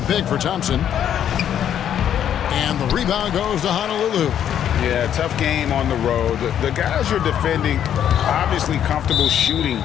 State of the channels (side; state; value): right; quieter; 9.8 dB